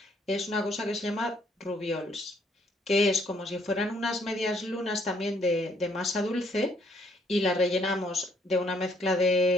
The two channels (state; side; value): normal; both; correlation 0.67